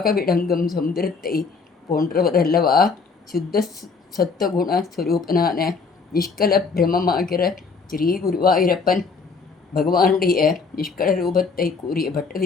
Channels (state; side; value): quieter; right; 4.8 dB